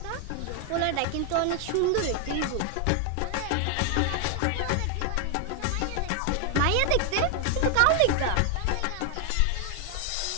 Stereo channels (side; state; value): both; different; correlation 0.00